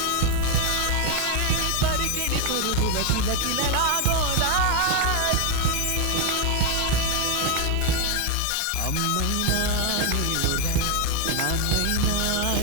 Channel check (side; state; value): both; different; correlation 0.01